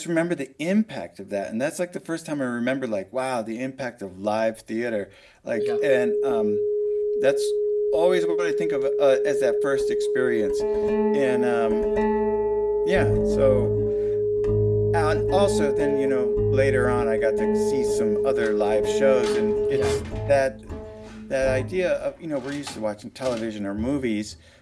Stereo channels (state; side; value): identical; both; correlation 1.00